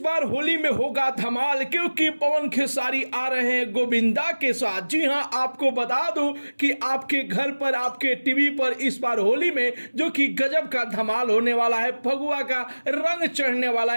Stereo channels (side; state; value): both; inverted; correlation -1.00